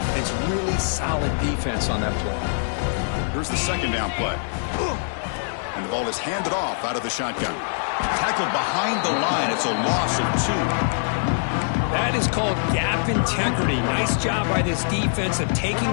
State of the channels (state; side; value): silent; right; digital silence